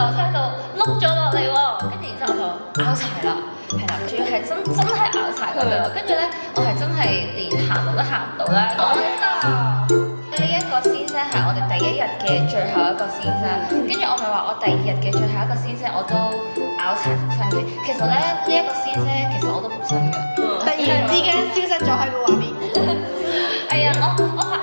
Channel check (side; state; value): both; inverted; correlation -1.00